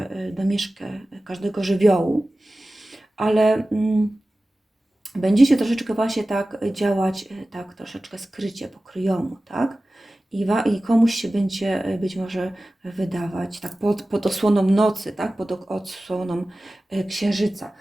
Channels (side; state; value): both; normal; correlation 0.96